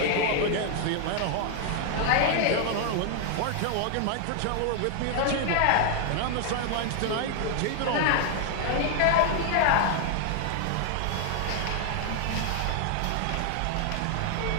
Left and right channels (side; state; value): both; different; correlation 0.00